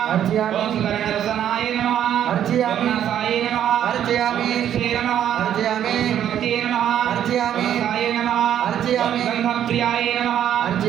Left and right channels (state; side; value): quieter; left; 10.2 dB